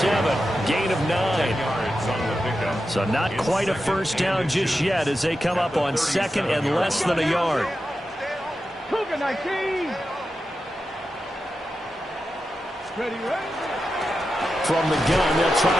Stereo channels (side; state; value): both; normal; correlation 0.90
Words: Gain of 9. So not quite a first down just yet as they come up on second and less than a yard. Cougar 19. Ready. From the gun, they'll try